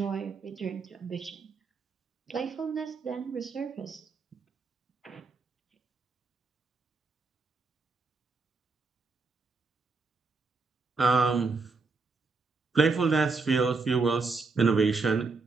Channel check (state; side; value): quieter; left; 4.2 dB